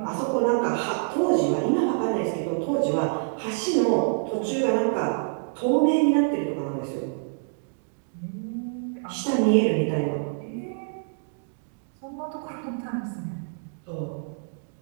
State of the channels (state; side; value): silent; left; digital silence